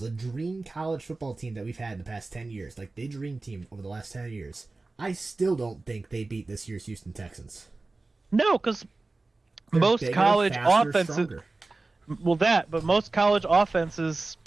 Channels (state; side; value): quieter; left; 3.4 dB